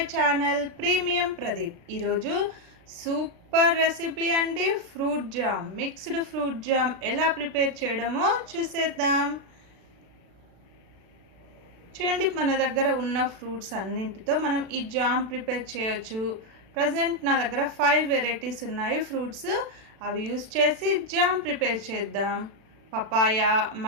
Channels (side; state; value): left; late; 36 ms